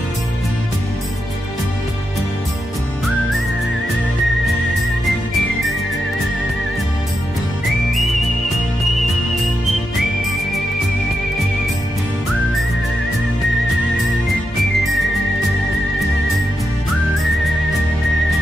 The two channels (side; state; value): both; normal; correlation 0.85